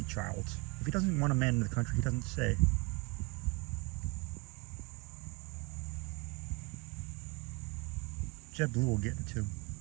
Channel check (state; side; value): quieter; left; 28.1 dB